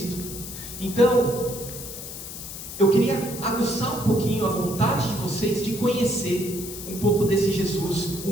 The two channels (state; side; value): noise; left; hiss, 10 dB below the sound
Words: Então, eu queria aguçar um pouquinho a vontade de vocês de conhecer um pouco desse Jesus, um